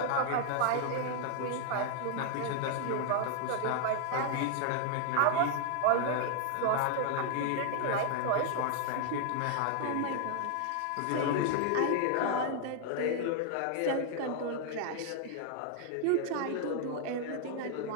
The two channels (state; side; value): different; both; correlation 0.00